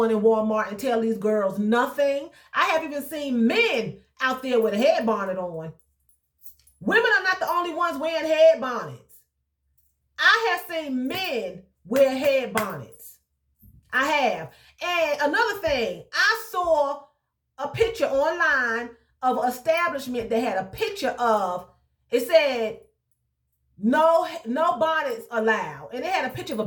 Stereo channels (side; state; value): both; identical; correlation 1.00